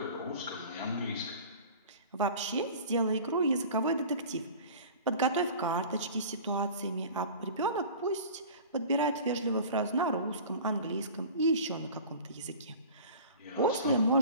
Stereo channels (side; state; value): both; inverted; correlation -0.40